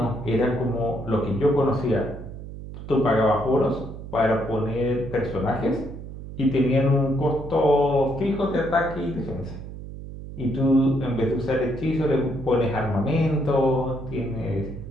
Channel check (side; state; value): right; noise; hum, 11 dB below the sound